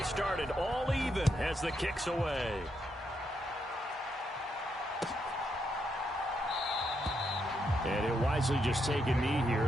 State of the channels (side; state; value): both; normal; correlation 0.80